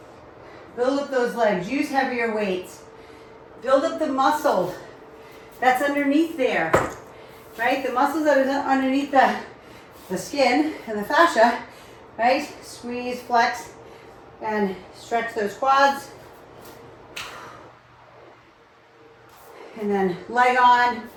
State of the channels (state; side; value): identical; both; correlation 1.00